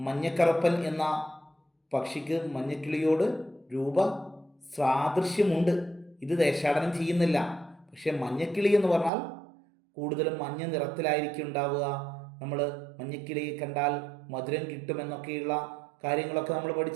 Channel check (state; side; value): drops out; left; at 9.1 s